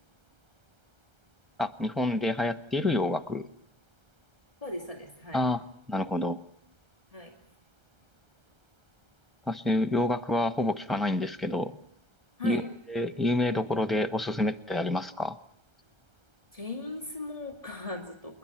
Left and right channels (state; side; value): late; left; 1.3 ms